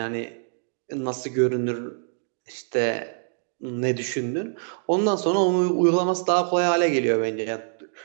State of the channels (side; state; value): left; silent; digital silence